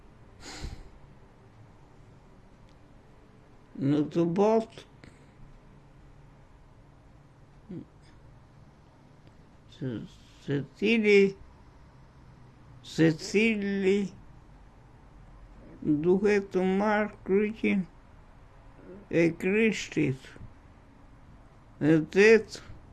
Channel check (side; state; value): both; identical; correlation 1.00